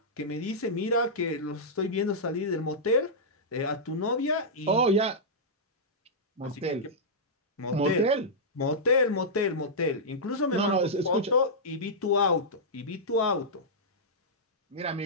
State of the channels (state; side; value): normal; both; correlation -0.11